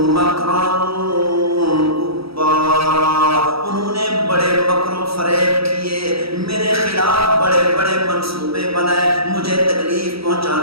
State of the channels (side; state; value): left; late; 0.76 ms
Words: مَكْرًا كُبَّارًا. انہوں نے بڑے مکر و فریب کیے، میرے خلاف بڑے بڑے منصوبے بنائے، مجھے تکلیف